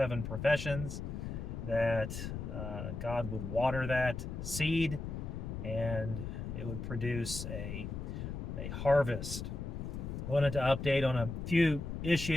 professions that God would water that seed and it would produce a harvest. I wanted to update on a few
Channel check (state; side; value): noise; left; rumble, 6 dB below the sound